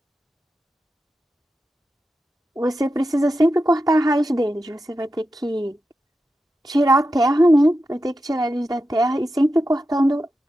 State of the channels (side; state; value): both; normal; correlation 0.90